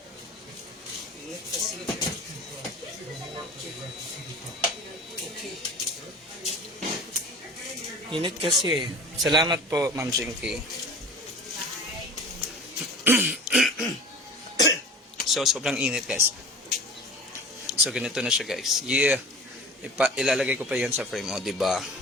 Ingat kasi. Okay. Init kasi. Salamat po, Ma'am Jinky. So, sobrang init, guys. So, ganito na siya, guys. Yeah. Ilalagay ko pa yan sa frame, o, diba?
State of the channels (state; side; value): normal; both; correlation 0.39